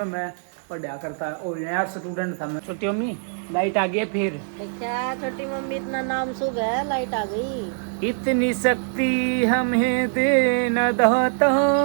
मैं पढ़ा करता और नया स्टूडेंट था मैं छोटी अम्मी लाइट आ गई है फिर। क्या छोटी मम्मी इतना नाम शुभ है, लाइट आ गई। इतनी शक्ति हमें दे न दाता,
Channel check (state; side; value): silent; left; digital silence